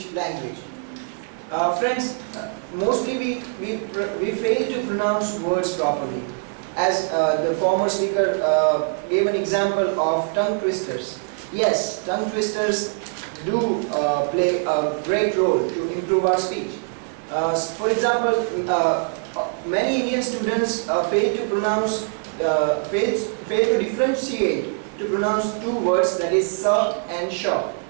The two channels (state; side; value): silent; left; 55 dB below the other